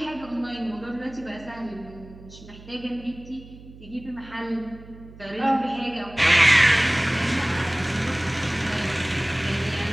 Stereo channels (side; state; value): right; noise; hum, 19 dB below the sound